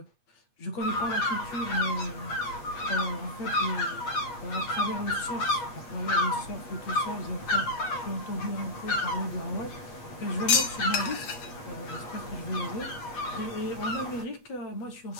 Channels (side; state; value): right; late; 8.3 ms